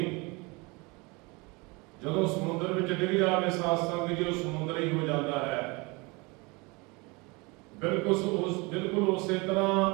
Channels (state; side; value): quieter; left; 26.7 dB